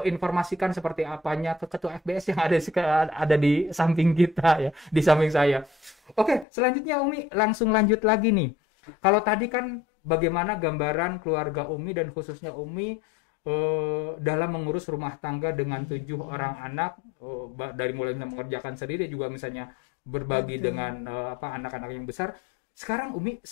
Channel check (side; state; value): right; drops out; at 6.5 s